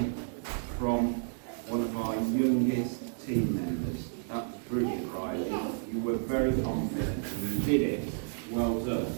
From one of our youngest team members. That was brilliant, Riley. You were very confident and you did it. Well done.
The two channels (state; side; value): silent; left; digital silence